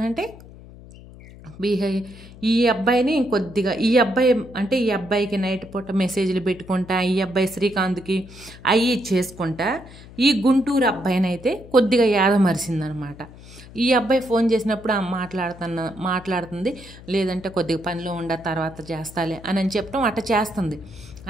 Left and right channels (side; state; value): left; noise; hum, 19 dB below the sound